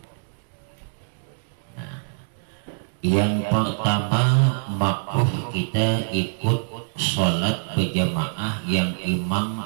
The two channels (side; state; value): left; silent; digital silence